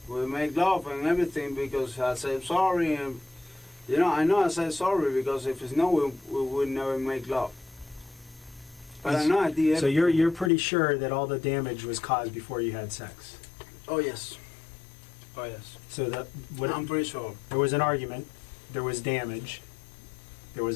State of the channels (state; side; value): drops out; right; at 10.5 s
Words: We make love and everything because I said sorry and I know I said sorry because if it's no, we would never make love. But I know I did. So you're pretty sure that all the damage was caused before you had sex. Oh yes. Oh yes. So I'm pretty sure. there was an argument, there was damage, there